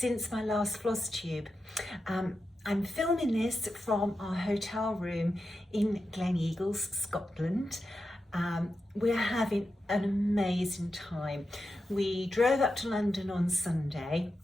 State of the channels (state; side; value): normal; both; correlation 0.89